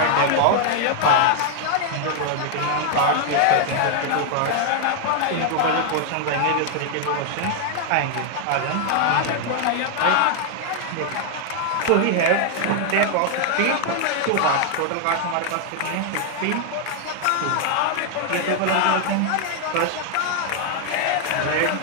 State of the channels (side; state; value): both; different; correlation 0.00